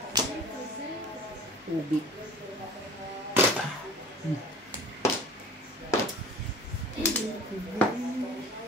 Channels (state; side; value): normal; both; correlation 0.42